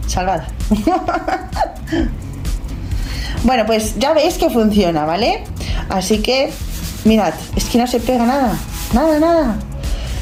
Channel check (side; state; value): both; identical; correlation 1.00